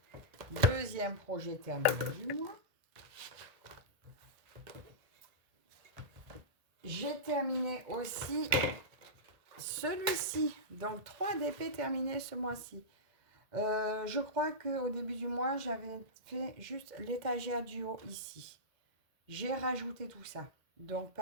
deuxième projet terminé du mois. J'ai terminé aussi celui-ci. Donc, 3 DP terminés ce mois-ci. Je crois qu'au début du mois, j'avais fait juste l'étagère du haut ici. J'ai rajouté tout ça. Donc,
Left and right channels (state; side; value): late; left; 1.8 ms